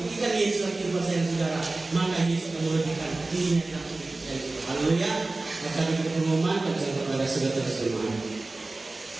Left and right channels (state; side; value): quieter; left; 3.2 dB